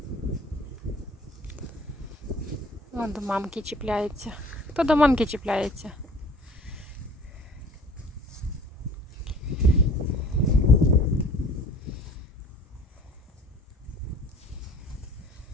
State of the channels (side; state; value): both; normal; correlation 0.49